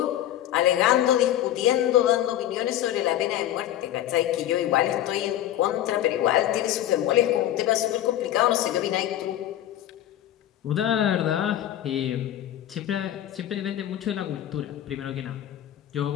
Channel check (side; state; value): right; quieter; 12.4 dB